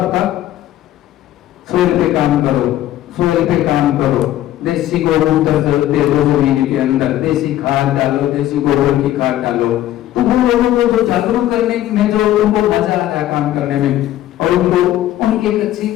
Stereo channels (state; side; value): quieter; right; 13.4 dB